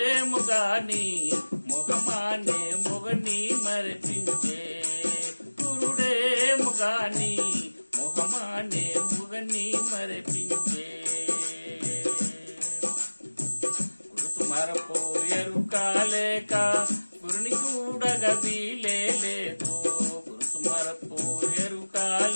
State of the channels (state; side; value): inverted; both; correlation -1.00